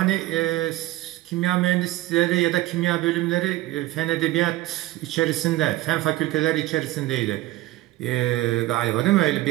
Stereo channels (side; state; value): left; quieter; 16.9 dB